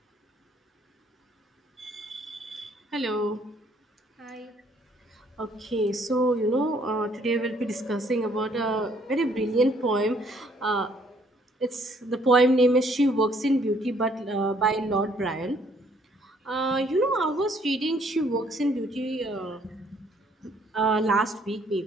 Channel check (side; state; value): both; normal; correlation 0.64